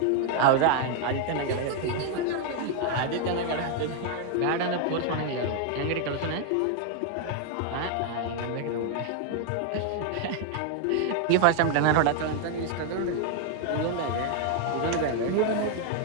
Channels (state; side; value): different; both; correlation 0.00